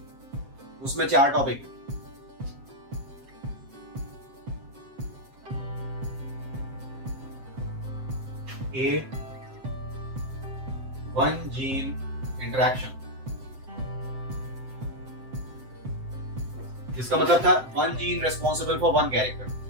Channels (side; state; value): left; late; 7.8 ms